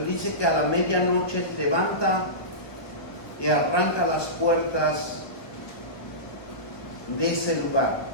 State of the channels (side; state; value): right; late; 1.4 ms